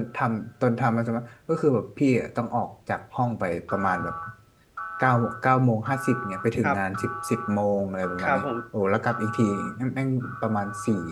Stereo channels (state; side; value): identical; both; correlation 1.00